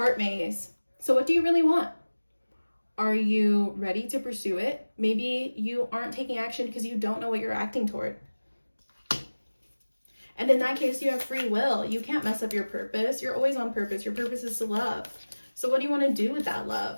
maze. So what do you really want? Are you ready to pursue it? Maybe you aren't taking action because you don't know what you're acting toward. And in that case, you have free will. You can't mess up your purpose. You're always on purpose. Your purpose is to love. So what do you want to do with that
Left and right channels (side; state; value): both; inverted; correlation -1.00